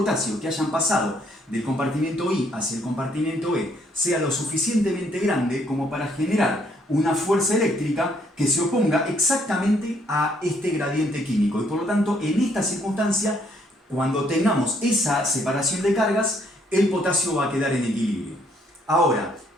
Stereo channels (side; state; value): both; normal; correlation 0.68